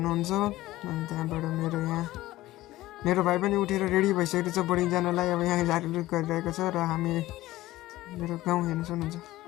अनि त्यहाँबाट मेरो भाइ पनि उठेर रेडी भइसकेको छ बोर्डिङ जानलाई। अब यहाँ झारझुर गरिरहेको छ र हामी मेरो गाउँ हेर्न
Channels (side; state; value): right; quieter; 16.6 dB